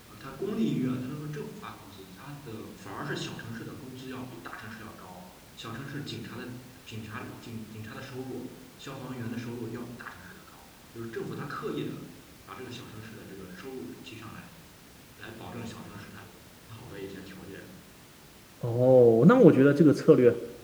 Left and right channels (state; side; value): identical; both; correlation 1.00